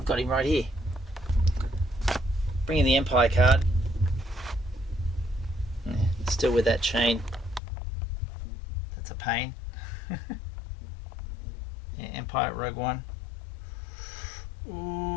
got him right here. Bring in the Empire card. Yeah, still with that chain. That's a pain. Yeah, Empire Rogue One.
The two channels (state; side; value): drops out; right; at 7.6 s